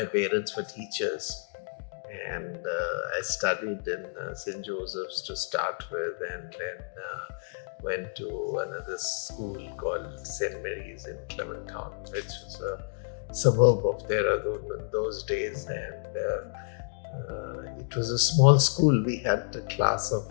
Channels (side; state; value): right; silent; digital silence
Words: parents were teachers, and I studied in St. Joseph's to start with, and then went to another school called St. Mary's in Clement Town, which was a suburb of Dehradun in those days. And it was a small school. We had a class of